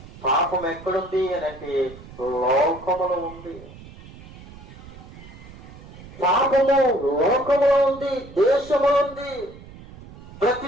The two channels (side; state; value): right; noise; rumble, 18 dB below the sound